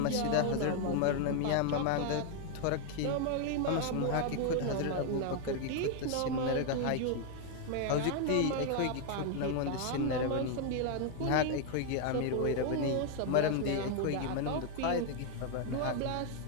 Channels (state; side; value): different; both; correlation 0.00